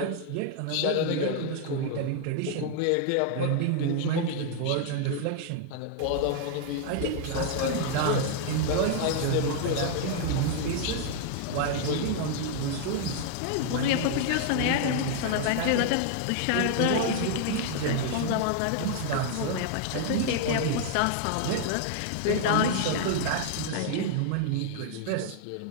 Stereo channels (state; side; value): different; both; correlation 0.00